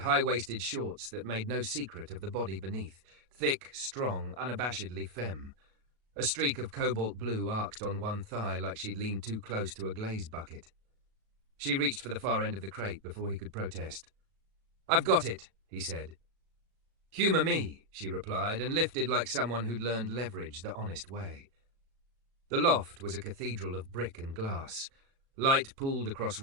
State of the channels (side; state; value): left; late; 37 ms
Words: shorts that made no secret of the body beneath, thick, strong, unabashedly femme. A streak of cobalt blue arced on one thigh like she'd leaned too close to a glaze bucket. She reached for the far end of the crate before he could protest. I've got it, he said. Humour me, she replied, and lifted like someone who'd learned leverage the honest way. The loft was a cathedral of brick and glass. Light pooled across